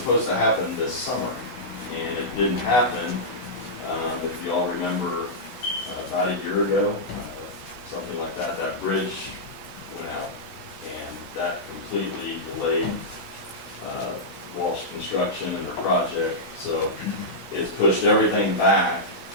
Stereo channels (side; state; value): right; late; 16 ms